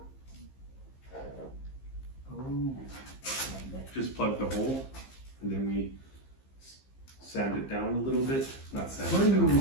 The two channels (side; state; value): right; late; 15 ms